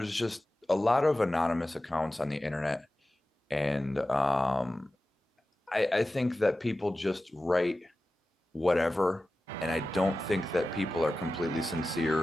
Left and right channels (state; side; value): normal; both; correlation 0.95